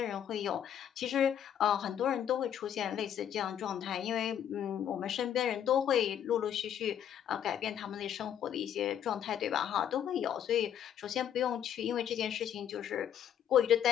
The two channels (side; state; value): right; quieter; 9.6 dB